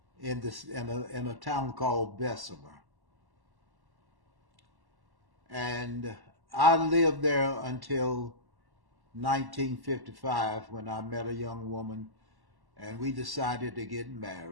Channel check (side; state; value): left; late; 1.1 ms